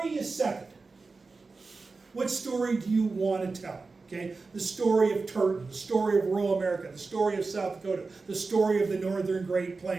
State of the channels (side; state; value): left; quieter; 4.0 dB